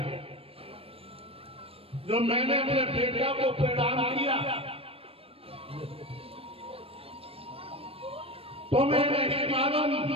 जो मैंने अपने बेटा को प्रदान किया तुम्हें नहीं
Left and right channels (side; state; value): left; late; 0.28 ms